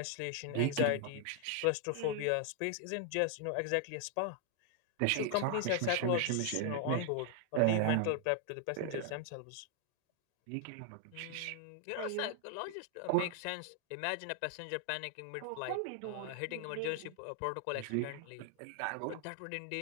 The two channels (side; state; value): both; different; correlation 0.00